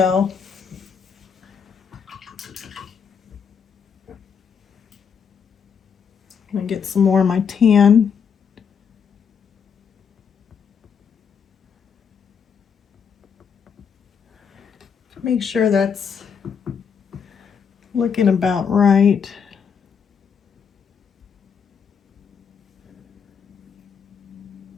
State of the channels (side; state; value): right; quieter; 6.7 dB